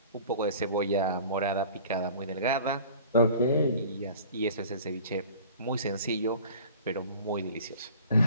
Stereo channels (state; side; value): inverted; both; correlation -0.44